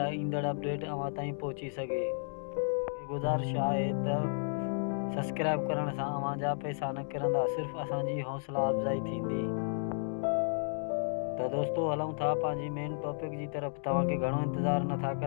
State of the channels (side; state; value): right; silent; digital silence